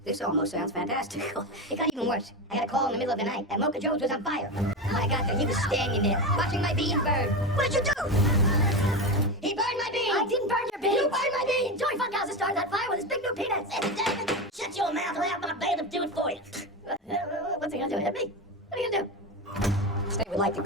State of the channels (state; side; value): normal; both; correlation 0.19